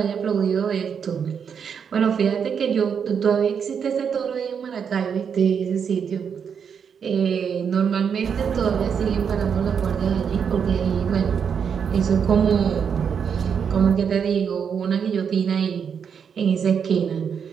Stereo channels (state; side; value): quieter; left; 7.1 dB